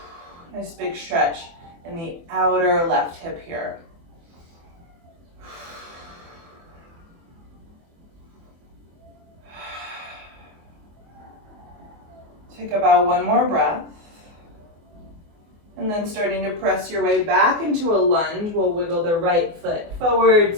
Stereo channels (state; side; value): late; left; 24 ms